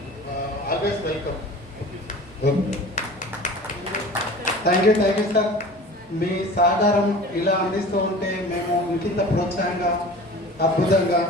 always welcome. Thank you sir. మీ సహకారం ఇలా అందిస్తూ ఉంటే మేము ఇంకింత ప్రోత్సాహంగా అద్భుతంగా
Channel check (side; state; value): both; normal; correlation 0.40